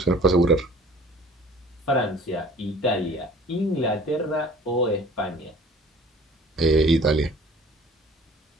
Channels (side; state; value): both; normal; correlation 0.49